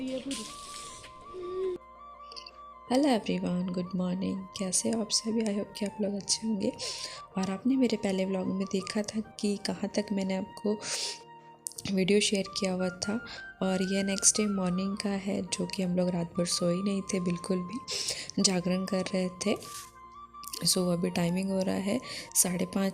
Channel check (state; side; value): identical; both; correlation 1.00